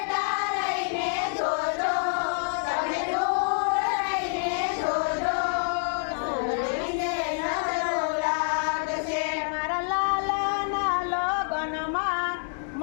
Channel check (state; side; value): silent; right; 60 dB below the other